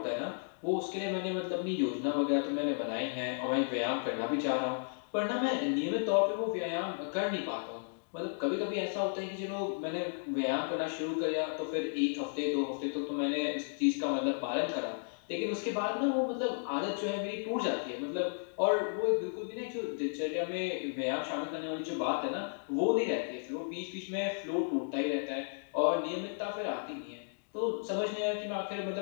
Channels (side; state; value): right; silent; digital silence